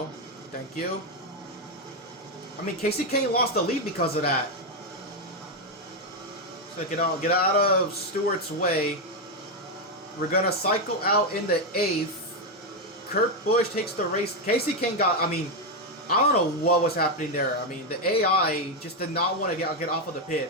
Thank you. I mean, Casey Kane lost the lead because of that. So get out of Stewart's way. We're gonna cycle out in the 8th. Kurt Busch takes the race. Casey Kane got, I mean, I don't know what was happening there. I mean, the AI just did not want to get off of the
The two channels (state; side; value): normal; both; correlation 0.05